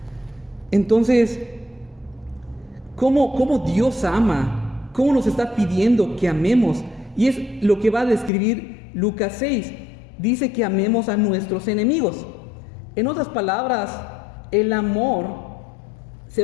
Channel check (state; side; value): drops out; right; at 8.3 s